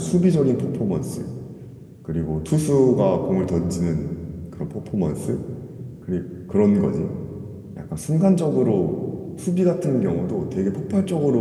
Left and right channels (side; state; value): both; identical; correlation 1.00